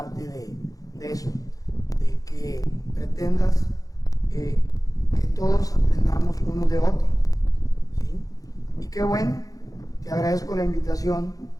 de eso, de que pretendas que todos aprendamos unos de otros, ¿sí? Y qué bueno, te agradezco la invitación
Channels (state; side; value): late; right; 0.17 ms